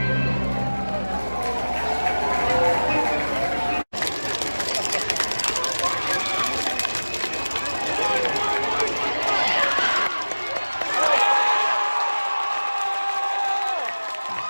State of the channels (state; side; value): inverted; both; correlation -1.00